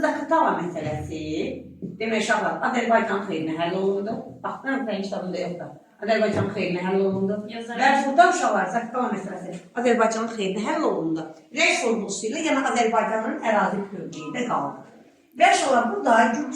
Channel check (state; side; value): identical; both; correlation 1.00